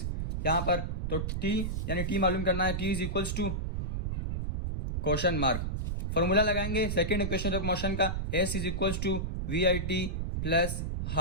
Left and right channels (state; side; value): noise; right; rumble, 1 dB below the sound